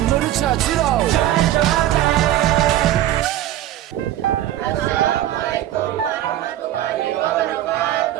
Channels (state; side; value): quieter; left; 13.1 dB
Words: 찾으러 Assalamualaikum warahmatullahi